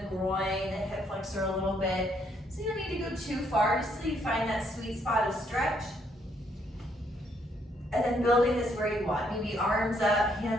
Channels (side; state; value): both; normal; correlation 0.71